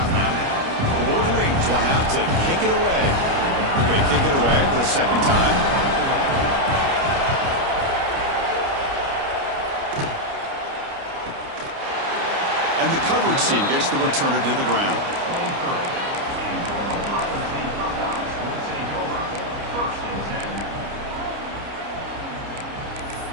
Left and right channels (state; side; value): late; left; 29 ms